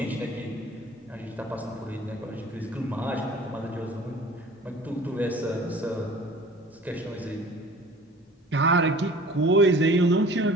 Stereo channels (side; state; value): both; normal; correlation 0.46